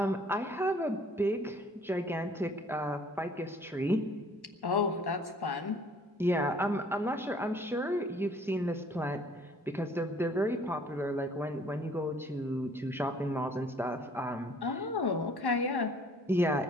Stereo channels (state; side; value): normal; both; correlation 0.56